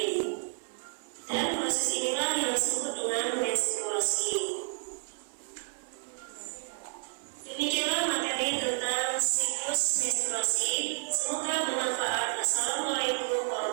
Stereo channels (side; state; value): left; silent; 57 dB below the other